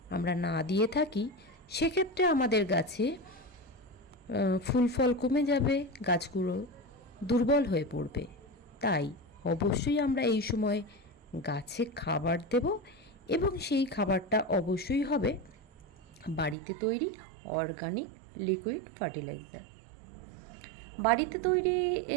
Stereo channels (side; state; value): left; drops out; at 16.6 s